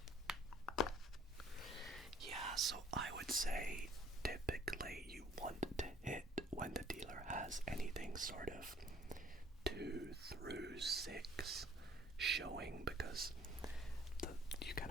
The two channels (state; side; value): normal; both; correlation 0.57